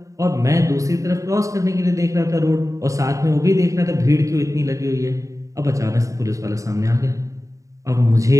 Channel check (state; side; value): late; left; 0.16 ms